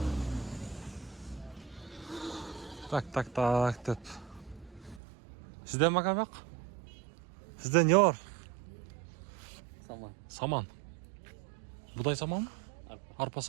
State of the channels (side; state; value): left; drops out; at 5.0 s